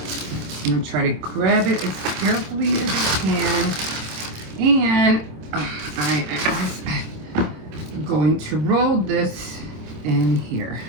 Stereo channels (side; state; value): left; late; 26 ms